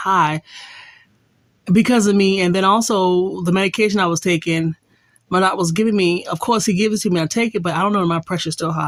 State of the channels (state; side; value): identical; both; correlation 1.00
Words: because of me. And then also the medication I was taking, my doctor was giving me, of course he gives it to me, I take it, but I don't know if my pressure is still